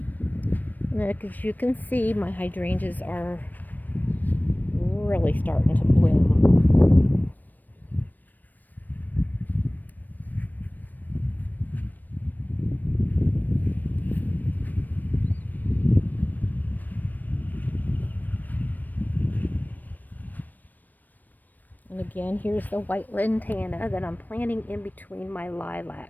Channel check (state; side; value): late; right; 0.087 ms